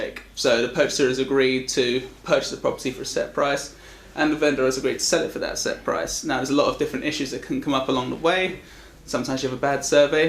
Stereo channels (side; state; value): both; identical; correlation 1.00